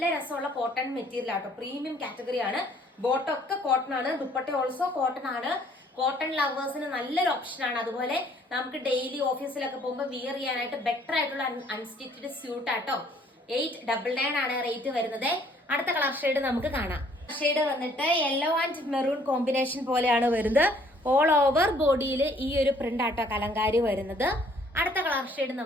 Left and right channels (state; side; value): normal; both; correlation 0.61